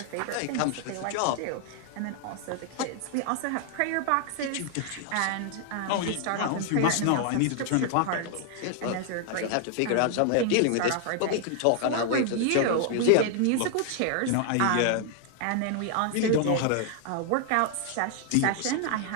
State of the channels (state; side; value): different; both; correlation 0.00